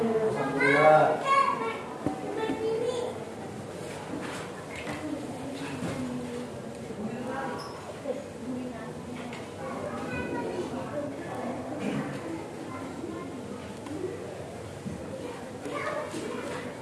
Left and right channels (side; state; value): both; identical; correlation 1.00